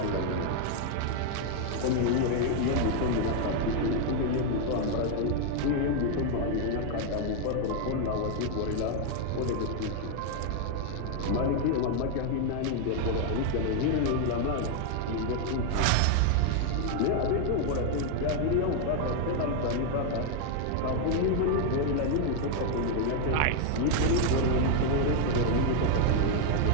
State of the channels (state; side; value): different; both; correlation 0.00